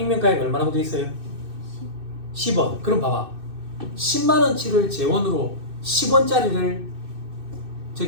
얼마라고 돼 있어요? 10원. 그럼 봐봐. 10만원치를 재원으로 10원짜리를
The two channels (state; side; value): late; left; 2.6 ms